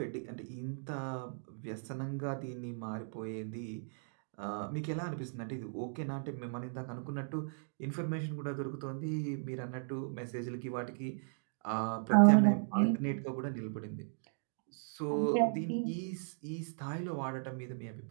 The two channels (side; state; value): left; silent; digital silence